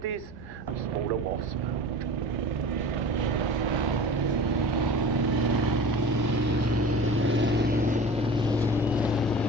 a smaller Wasp.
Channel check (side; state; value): both; normal; correlation 0.37